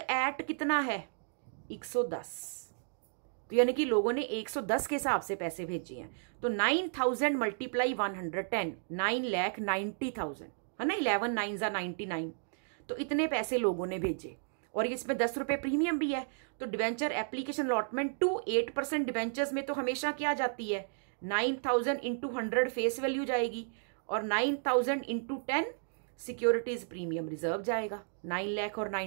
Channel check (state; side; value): silent; left; digital silence